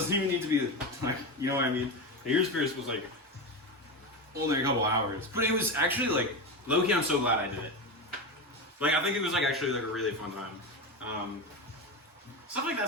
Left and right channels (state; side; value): normal; both; correlation 0.18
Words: even need to be like, you know what I mean? The ears pierced was like only a couple hours, but it was actually like low key. I'm so glad I did it. Like I think it was like actually like a really fun time. Stuff like